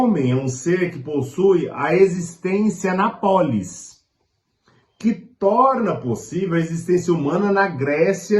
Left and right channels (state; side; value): identical; both; correlation 1.00